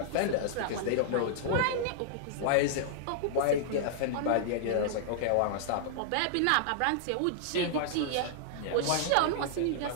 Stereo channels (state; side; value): different; both; correlation -0.01